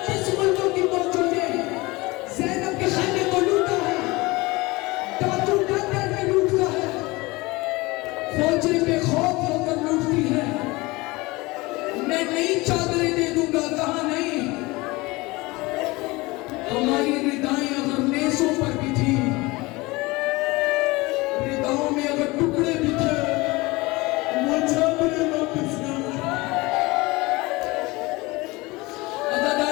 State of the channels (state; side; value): quieter; right; 22.6 dB